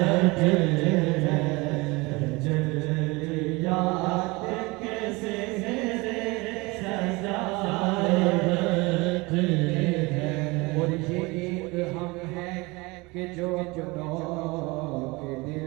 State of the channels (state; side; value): quieter; left; 24.4 dB